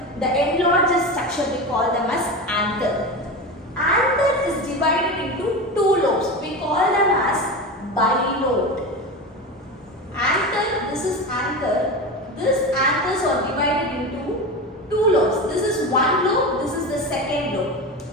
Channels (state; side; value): normal; both; correlation 0.24